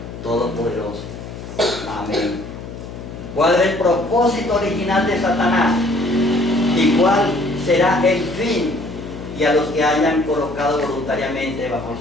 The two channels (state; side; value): noise; left; hum, 11 dB below the sound